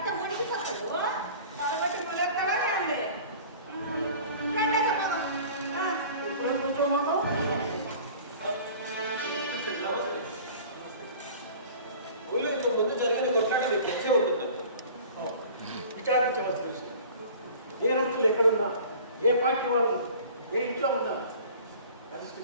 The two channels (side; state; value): both; inverted; correlation -0.44